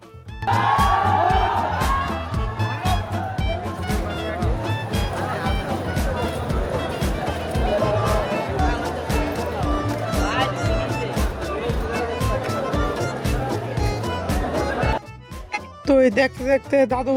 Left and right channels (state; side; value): identical; both; correlation 1.00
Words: তো এই দেখতে দেখতে দাদু